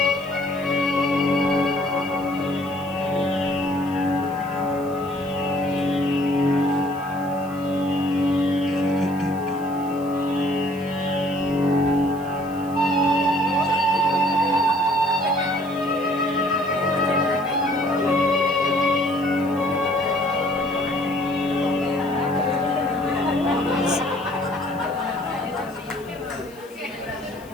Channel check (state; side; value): noise; left; hiss, 25 dB below the sound